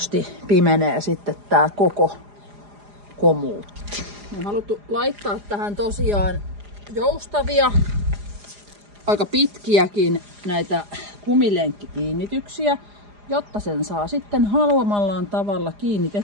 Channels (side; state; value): left; late; 4.9 ms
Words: pimenee sitten tää koko komuutti. Me on haluttu laittaa tähän tosiaan joustavia, aika pitkiäkin näitä kumilenkkikiinnityksiä, jotta sen saa sitten haluamallaan tavalla